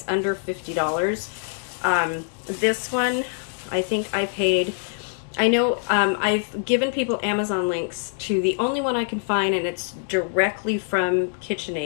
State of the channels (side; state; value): right; silent; digital silence